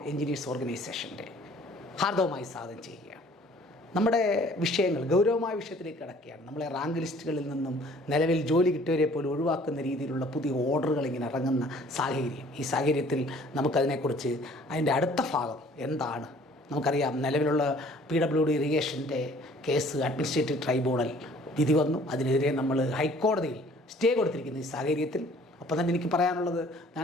എഞ്ചിനീയേഴ്സ് ഓർഗനൈസേഷൻ്റെ ഹാർദവമായി സ്വാഗതം ചെയ്യുകയാണ്. നമ്മുടെ വിഷയങ്ങൾ ഗൗരവമായ വിഷയത്തിലേക്ക് കിടക്കുകയാണ്. നമ്മളെ റാങ്ക് ലിസ്റ്റുകളിൽ നിന്നും നിലവിൽ ജോലി കിട്ടിയവരെ പോലും ഒഴിവാക്കുന്ന രീതിയിലുള്ള പുതിയ ഓർഡറുകൾ ഇങ്ങനെ ഇറങ്ങുന്ന സാഹചര്യം. ഈ സാഹചര്യത്തിൽ നമുക്കതിനെക്കുറിച്ച് അതിൻ്റെ അടുത്ത ഭാഗം എന്താണ് നമുക്കറിയാം. നിലവിലുള്ള PWD ഇറിഗേഷൻ്റെ കേസ് അഡ്മിനിസ്ട്രേറ്റീവ് ട്രൈബ്യൂണൽ വിധി വന്നു. അതിനെതിരെ നമ്മൾ ഹൈക്കോടതിയിൽ സ്റ്റേ കൊടുത്തിരിക്കുന്ന ഈ സാഹചര്യത്തിൽ അപ്പോൾ തന്നെ എനിക്ക് പറയാനുള്ളത്,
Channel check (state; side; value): normal; both; correlation 0.54